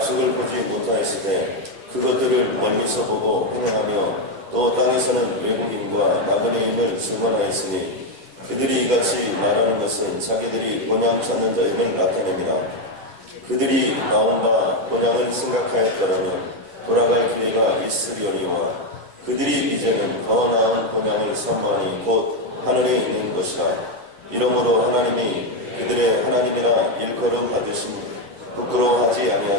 보지 못하였으되 그것들을 멀리서 보고 행하며 또 땅에서는 외국인과 나그네임을 증언하였으니 그들이 이같이 말하는 것은 자기들이 본향 찾는 자임을 나타냅니다. 그들이 나온 바 본향을 생각하였더라면 돌아갈 기회가 있으려니와 그들이 이제는 더 나은 본향을 사모하니 곧 하늘에 있는 것이라. 이러므로 하나님이 그들의 하나님이라 일컬음 받으신 부끄러워하지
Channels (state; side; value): late; left; 10 ms